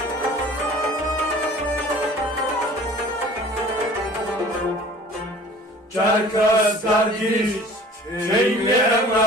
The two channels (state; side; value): normal; both; correlation 0.47